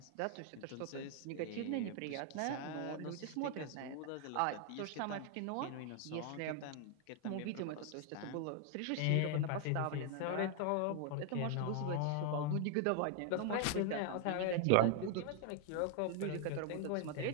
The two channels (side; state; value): both; different; correlation 0.00